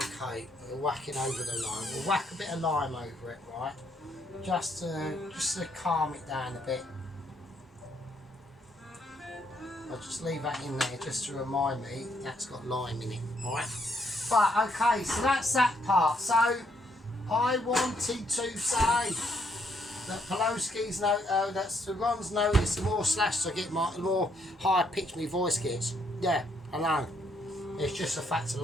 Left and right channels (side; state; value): both; normal; correlation 0.72